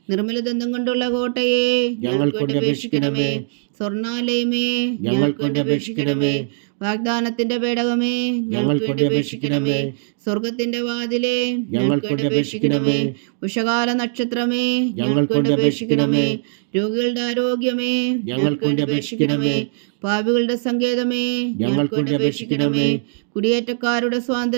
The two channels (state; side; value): silent; left; digital silence